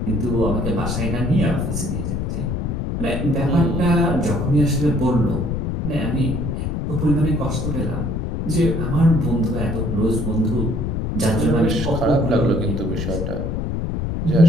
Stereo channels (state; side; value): noise; left; rumble, 1 dB below the sound